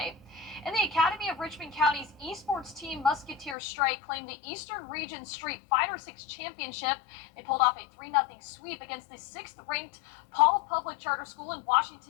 In the Academy of Richmond County's esports team, Musketeer Strike claimed the Eastern Region Street Fighter 6 Championship. They pulled off a 3-0 sweep against the 6th-ranked Paul Public Charter School in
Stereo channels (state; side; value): drops out; right; at 3.6 s